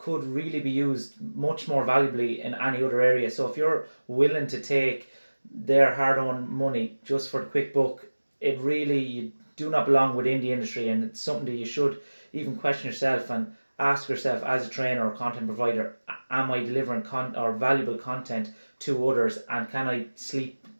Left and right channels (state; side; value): inverted; both; correlation -1.00